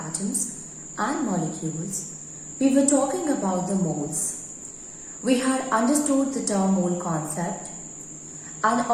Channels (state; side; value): identical; both; correlation 1.00